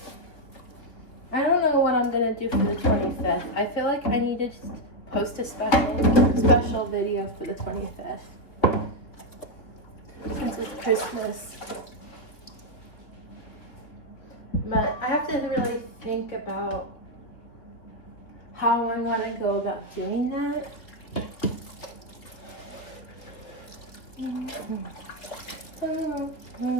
I don't know what I'm gonna do for the 25th. I feel like I need to just post a special video for the 25th. Since it's Christmas. But I have to really think about how I want to go about doing that.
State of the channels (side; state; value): right; late; 3.4 ms